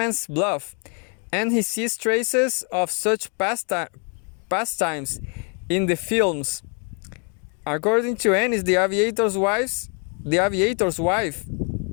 Bluff, and he sees traces of such pastimes in the films. According to Ennis, The Aviator's Wife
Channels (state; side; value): quieter; right; 39.0 dB